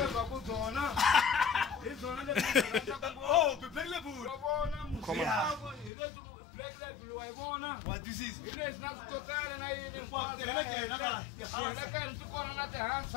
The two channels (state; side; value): drops out; right; at 5.9 s